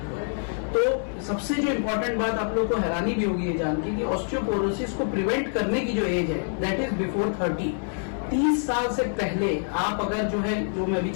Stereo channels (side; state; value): right; silent; 61 dB below the other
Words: हुआ है। तो सबसे जो इम्पोर्टेंट बात आप लोग को हैरानी भी होगी ये जान के कि ऑस्टियोपोरोसिस को प्रिवेंट करने की जो एज है दैट इज बिफोर 30। 30 साल से पहले आप अगर जो मैं अभी